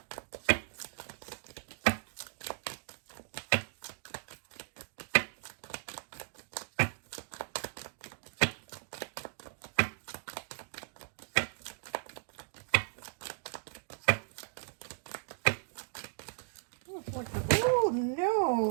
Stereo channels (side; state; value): left; silent; digital silence